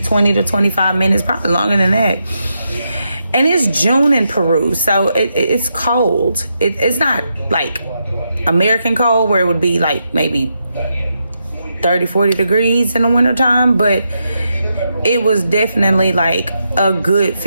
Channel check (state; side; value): inverted; both; correlation -0.83